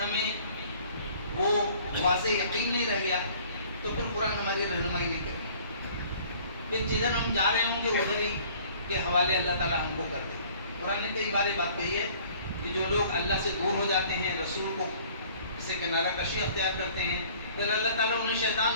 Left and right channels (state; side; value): inverted; both; correlation -0.53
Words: وہ واضح یقین نہیں رہ گیا، تو پھر قرآن ہماری رہنمائی نہیں کرے. پھر جدھر ہم جا رہے ہوں گے ادھر ہی کے حوالے اللہ تعالیٰ ہم کو کر دے. قرآن نے کئی بار بات کہی ہے کہ جو لوگ اللہ سے دور ہو جاتے ہیں، رسول کو سے کنارہ کشی اختیار کرتے ہیں، پھر اللہ تعالیٰ انہیں